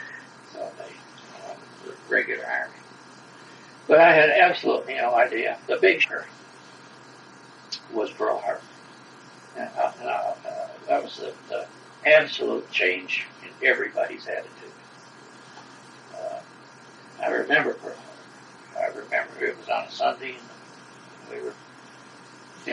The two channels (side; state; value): both; identical; correlation 1.00